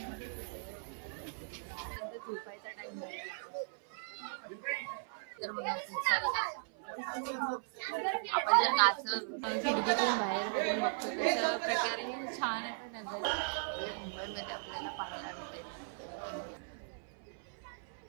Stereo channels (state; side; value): silent; left; 53 dB below the other